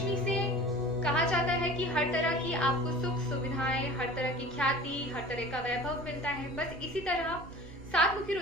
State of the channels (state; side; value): normal; both; correlation 0.41